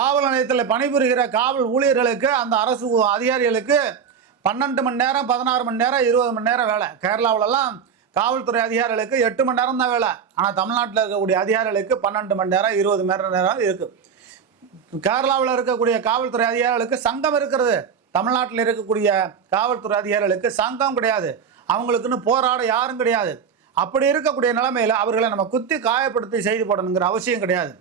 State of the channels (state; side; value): quieter; left; 6.9 dB